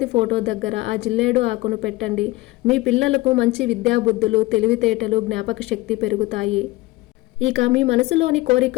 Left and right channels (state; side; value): quieter; right; 19.7 dB